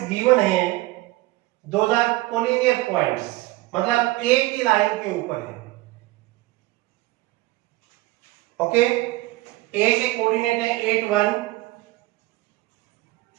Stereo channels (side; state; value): left; quieter; 19.5 dB